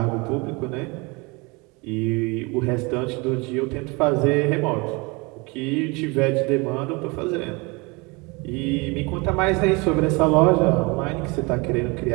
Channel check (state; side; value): quieter; left; 27.3 dB